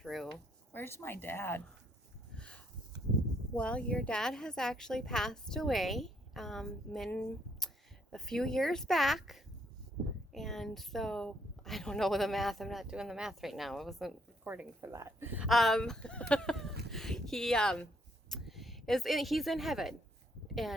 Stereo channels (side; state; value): both; normal; correlation 0.70